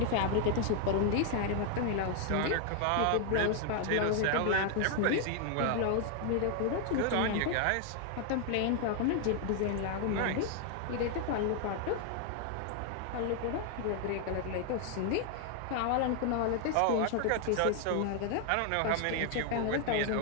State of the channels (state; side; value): different; both; correlation 0.00